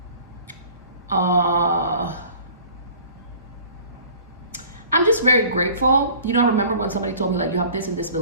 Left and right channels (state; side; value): inverted; both; correlation -0.48